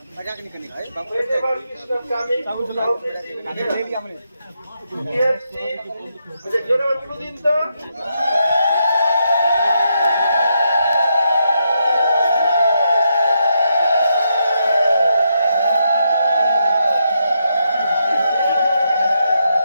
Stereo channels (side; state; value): both; inverted; correlation -0.81